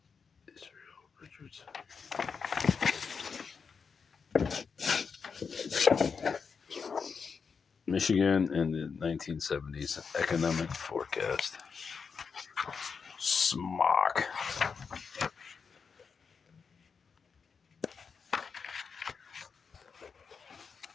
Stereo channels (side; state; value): right; quieter; 5.7 dB